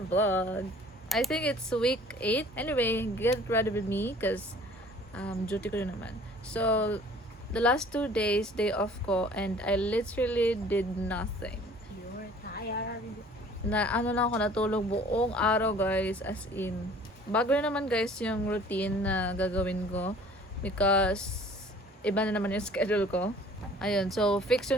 I think it's week 8. Anyway, get ready with me because duty ko rin naman. So, the last 2 days, day off ko, and I literally did nothing. You're tired. Ano lang ako natulog buong araw guys, as in. Bago na naman guys yung routine na gagawin ko because iba na naman yung schedule ko. Ayun, so fix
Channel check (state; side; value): normal; both; correlation 0.51